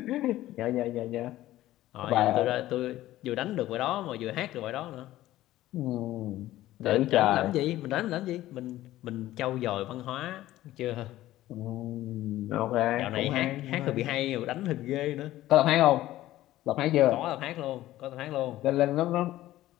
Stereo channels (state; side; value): quieter; right; 15.1 dB